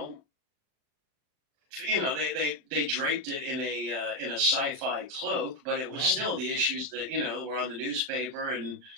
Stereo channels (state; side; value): late; left; 39 ms